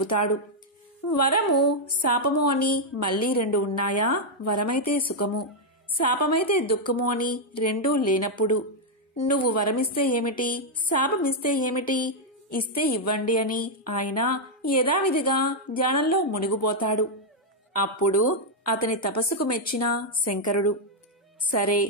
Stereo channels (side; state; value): both; normal; correlation -0.02